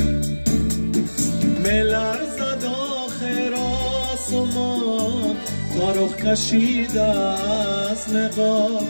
ملرزد آخر آسمان تا رخ کشیده از نقاب،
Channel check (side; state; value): both; inverted; correlation -1.00